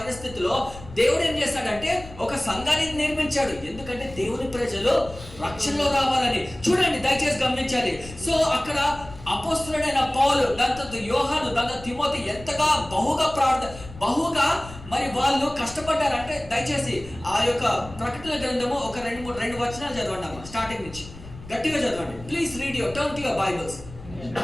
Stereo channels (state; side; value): noise; left; rumble, 16 dB below the sound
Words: దేవుడు ఏం చేశాడంటే ఒక సంఘాన్ని నిర్మించాడు. ఎందుకంటే దేవుని ప్రజలు రక్షణలో రావాలని. చూడండి, దయచేసి గమనించాలి. సో అక్కడ అపోస్తలుడైన పౌలు, దాంతో యోహాను, దాంతో తిమోతి ఎంతగా బహుగా మరి వాళ్ళు కష్టపడ్డారంటే, దయచేసి ఆ యొక్క ప్రకటన గ్రంథము ఒక 2 వచనాలు చదవండి అమ్మా, స్టార్టింగ్ నుంచి గట్టిగా చదవండి. Please read your turn to your Bibles.